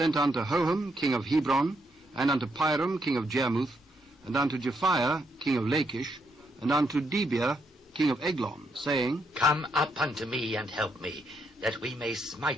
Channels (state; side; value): normal; both; correlation 0.77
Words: unto Hoham, king of Hebron, and unto Piram, king of Jarmuth, and unto Japhia, king of Lachish, and unto Debir, king of Eglon, saying, Come up unto me and help me, that we may